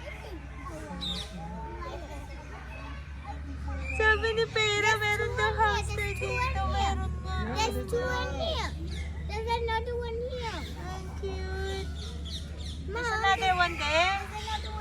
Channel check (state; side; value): identical; both; correlation 1.00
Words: Sabi ni Pera, meron daw hamster dito. Meron nga. There's two in here. There's another one here. Ang cute. Mom, There's another one there. there's another